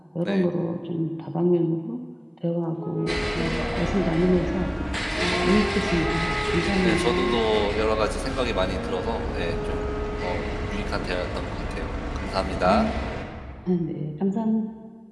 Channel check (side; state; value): both; identical; correlation 1.00